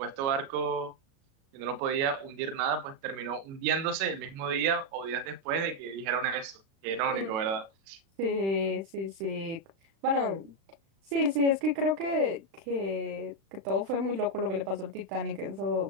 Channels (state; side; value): late; left; 36 ms